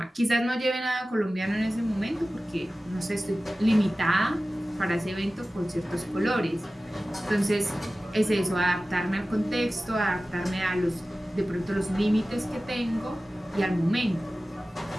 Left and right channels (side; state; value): both; normal; correlation 0.96